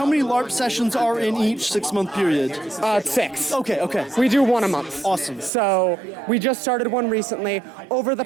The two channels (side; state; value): left; drops out; at 5.5 s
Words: many LARP sessions are in each 6-month period? 6. Okay. We do one a month. Awesome. So we just started one recently. Over